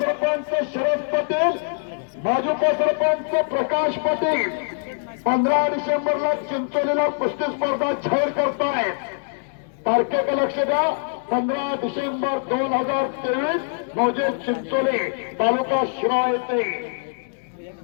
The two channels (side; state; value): right; silent; digital silence